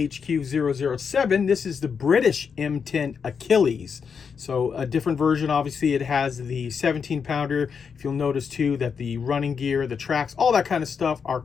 007. This is the British M10 Achilles. So a different version, obviously it has the 17 pounder. If you'll notice too that the running gear, the tracks, all that kind of stuff are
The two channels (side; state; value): right; quieter; 6.3 dB